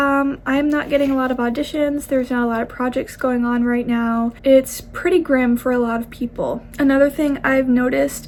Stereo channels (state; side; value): identical; both; correlation 1.00